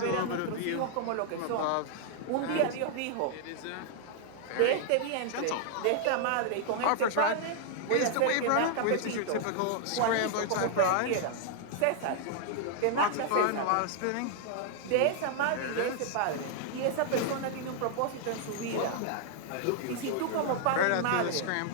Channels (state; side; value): different; both; correlation 0.00